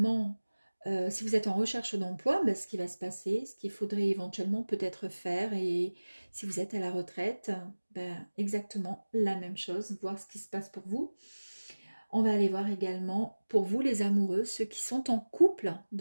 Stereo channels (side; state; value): both; inverted; correlation -1.00